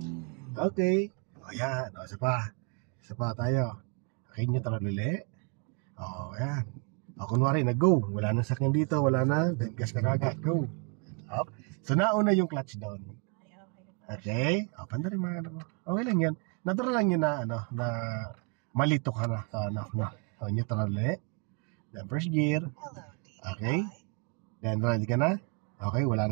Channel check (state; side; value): quieter; left; 33.7 dB